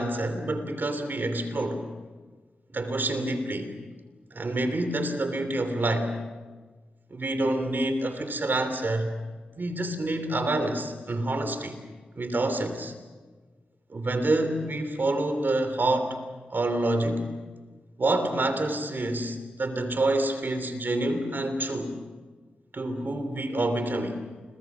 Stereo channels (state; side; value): normal; both; correlation 0.83